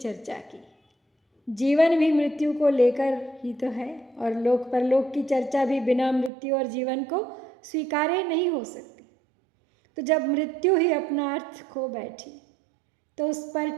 की। जीवन भी मृत्यु को लेकर ही तो है, और लोक परलोक की चर्चा भी बिना मृत्यु और जीवन को स्वीकारे नहीं हो सकती। तो जब मृत्यु ही अपना अर्थ खो बैठी तो उस पर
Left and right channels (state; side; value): drops out; left; at 6.3 s